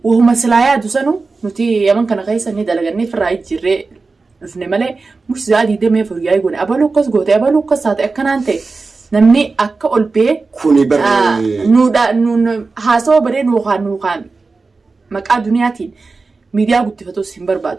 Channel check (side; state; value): left; quieter; 4.0 dB